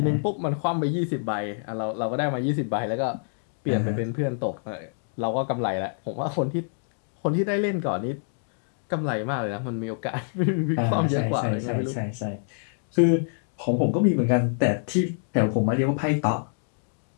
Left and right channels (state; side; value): silent; right; digital silence